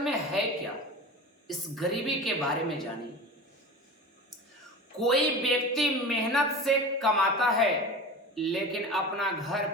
है क्या, इस गरीबी के बारे में जानिए। कोई व्यक्ति मेहनत से कमाता है लेकिन अपना घर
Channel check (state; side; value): normal; both; correlation 0.33